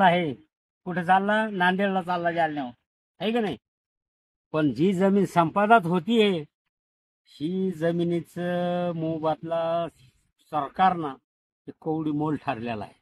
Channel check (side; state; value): both; identical; correlation 1.00